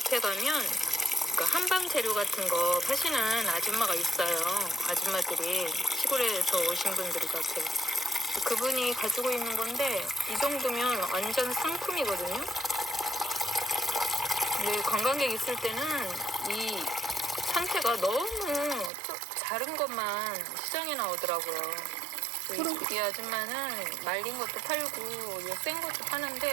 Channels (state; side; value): drops out; left; at 18.9 s